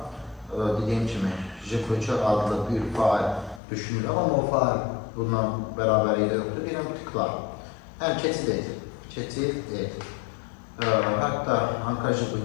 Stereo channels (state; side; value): drops out; right; at 3.6 s